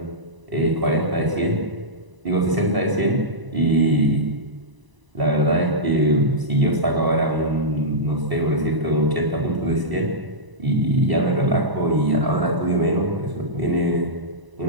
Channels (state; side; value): late; left; 1.0 ms